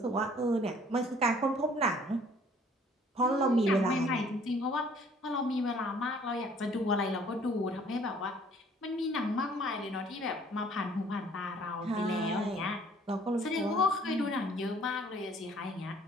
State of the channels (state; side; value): normal; both; correlation 0.57